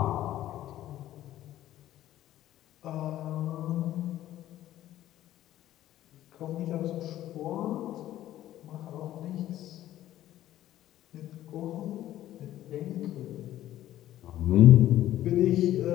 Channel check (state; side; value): quieter; right; 13.4 dB